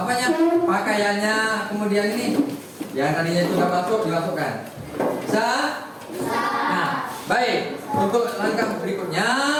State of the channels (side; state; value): both; identical; correlation 1.00